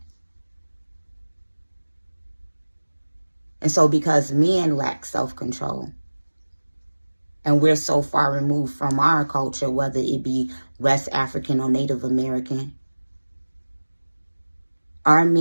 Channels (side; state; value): both; inverted; correlation -1.00